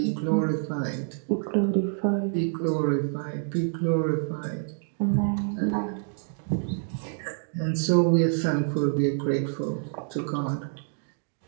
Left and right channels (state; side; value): silent; left; digital silence